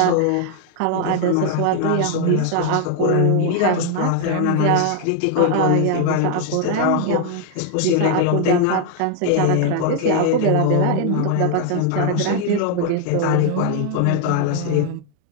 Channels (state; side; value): different; both; correlation 0.00